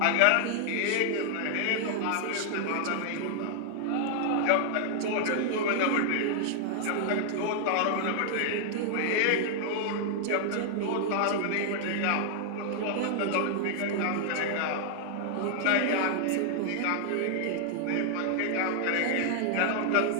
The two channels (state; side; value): different; both; correlation 0.00